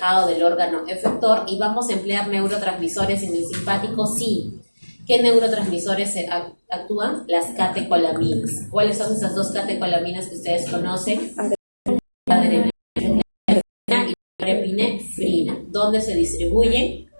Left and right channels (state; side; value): inverted; both; correlation -1.00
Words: del órgano efector, y vamos a emplear neurotransmisores en el simpático, sí. ¿Qué neurotransmisores actúan? Las catecolaminas. ¿Cuáles son esas dos catecolaminas que ustedes conocen? Adrenalina y norepinefrina. ¿Dónde se distribuyen?